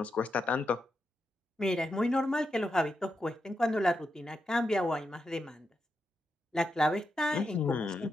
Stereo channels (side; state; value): both; normal; correlation 0.86